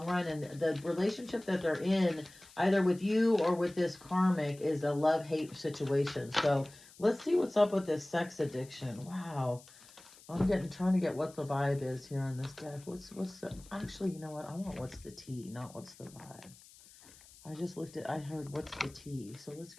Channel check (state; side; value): noise; left; hiss, 22 dB below the sound